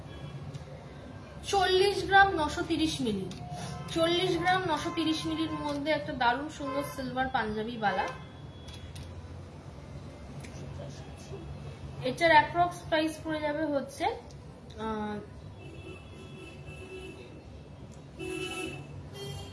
40 গ্রাম 930 মিলি। 40 গ্রাম 930 মিলির মধ্যে একটা দারুণ সুন্দর সিলভার পাঞ্জাবি বালা। এটার অ্যাপ্রক্স প্রাইস পড়ে যাবে হচ্ছে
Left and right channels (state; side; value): identical; both; correlation 1.00